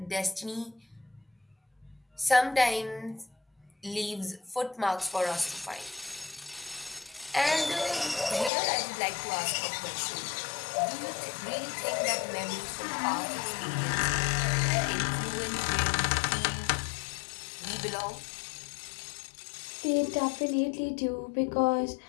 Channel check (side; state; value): right; drops out; at 8.5 s